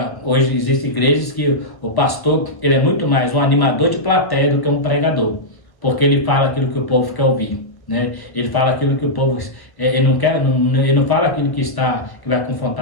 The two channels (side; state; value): right; late; 1.1 ms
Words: Hoje existem igrejas que o pastor ele é muito mais um animador de plateia do que um pregador, porque ele fala aquilo que o povo quer ouvir. Né? Ele fala aquilo que o povo ele não quer, ele não fala aquilo que vai